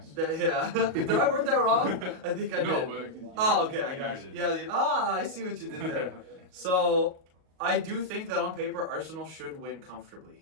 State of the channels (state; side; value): late; left; 38 ms